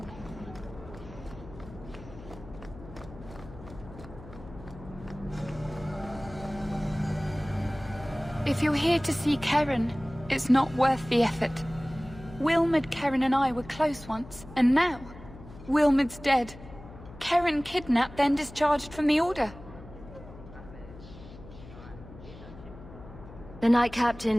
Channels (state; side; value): noise; left; hum, 17 dB below the sound